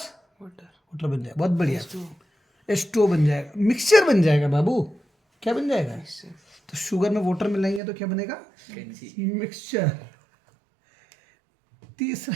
वाटर बन जाएगा। बहुत बढ़िया, H2O बन जाएगा, मिक्सचर बन जाएगा बाबू। क्या बन जाएगा? तो शुगर में वाटर मिलाएंगे तो क्या बनेगा? मिक्सचर।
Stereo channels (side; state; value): left; drops out; at 7.8 s